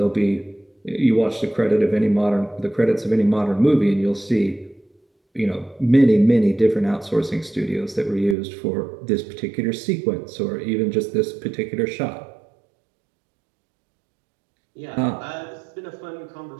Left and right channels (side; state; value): left; drops out; at 8.3 s